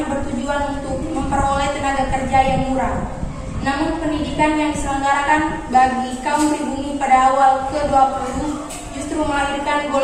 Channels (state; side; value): identical; both; correlation 1.00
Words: bertujuan untuk memperoleh tenaga kerja yang murah. Namun pendidikan yang diselenggarakan bagi kaum pribumi pada awal ke-20 justru melahirkan